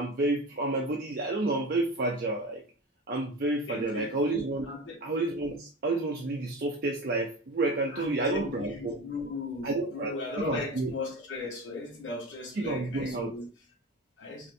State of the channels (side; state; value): both; normal; correlation 0.30